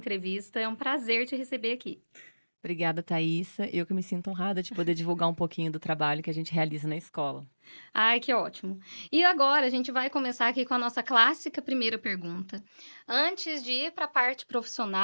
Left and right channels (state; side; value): inverted; both; correlation -1.00